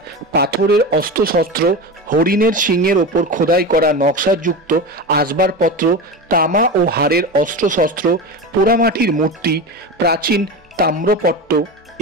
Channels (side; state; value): both; normal; correlation 0.24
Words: পাথরের অস্ত্রশস্ত্র, হরিণের শিংয়ের ওপর খোদাই করা নকশাযুক্ত আসবাবপত্র, তামা ও হাড়ের অস্ত্রশস্ত্র, পোড়ামাটির মূর্তি, প্রাচীন তাম্রপট্ট।